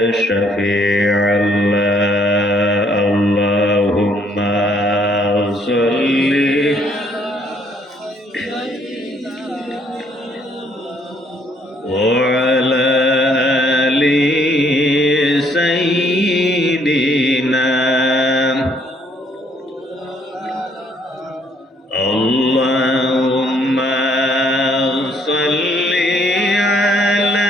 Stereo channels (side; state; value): both; normal; correlation 0.66